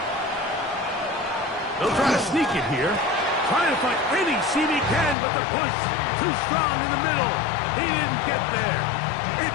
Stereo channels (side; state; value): right; drops out; at 5.2 s